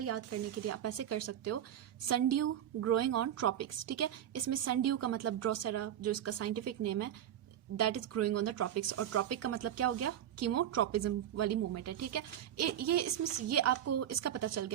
याद करने के लिए आप ऐसे कर सकते हो, सनड्यू ग्रोइंग ऑन ट्रॉपिक्स। ठीक है, इसमें सनड्यू का मतलब ड्रोसेरा, जो इसका साइंटिफिक नेम है, that is growing on the tropics, और ट्रॉपिक का मतलब क्या हो गया? कीमोट्रॉपिज्म वाली मूवमेंट है। ठीक है, ये इसमें ये आपको इसका पता चल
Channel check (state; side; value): quieter; left; 10.7 dB